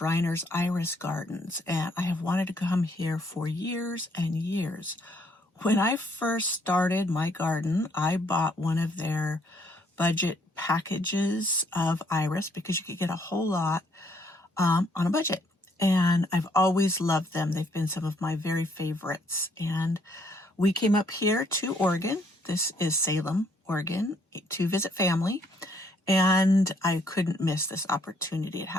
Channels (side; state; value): both; normal; correlation 0.68